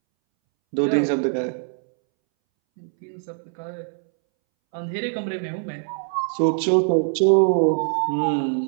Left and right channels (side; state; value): left; silent; 63 dB below the other